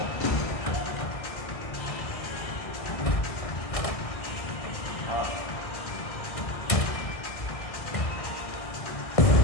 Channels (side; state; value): right; late; 1.6 ms